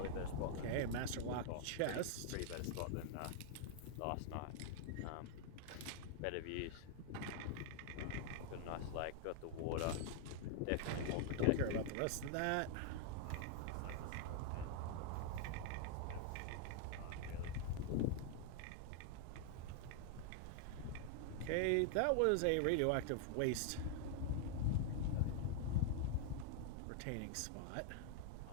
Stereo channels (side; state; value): both; different; correlation 0.00